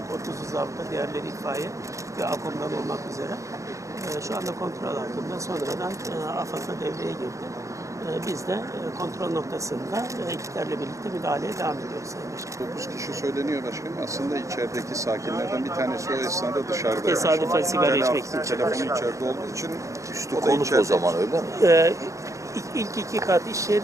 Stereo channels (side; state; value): left; late; 0.15 ms